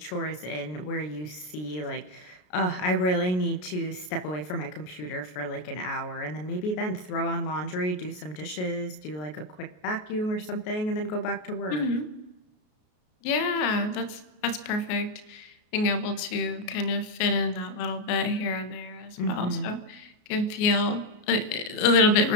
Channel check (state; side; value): late; right; 33 ms